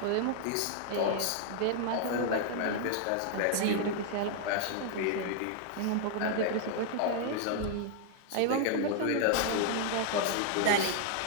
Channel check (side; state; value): both; different; correlation 0.00